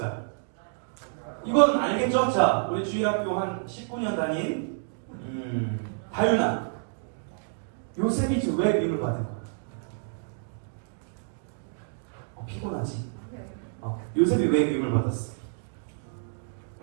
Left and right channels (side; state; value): left; silent; digital silence